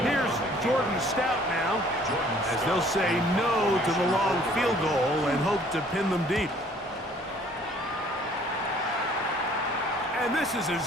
Here's Jordan Stout now, as they'll say no to the long field goal and hope to pin them deep. And this is as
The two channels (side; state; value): both; normal; correlation 0.57